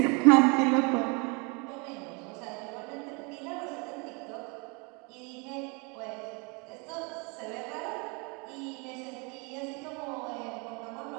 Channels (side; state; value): left; quieter; 31.2 dB